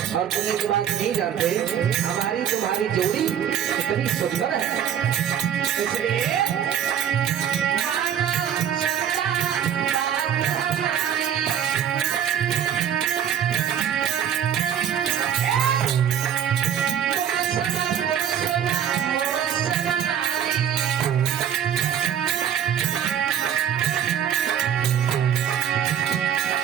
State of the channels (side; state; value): left; quieter; 9.0 dB